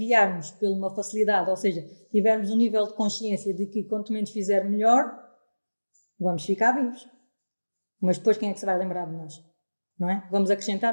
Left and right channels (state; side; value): inverted; both; correlation -1.00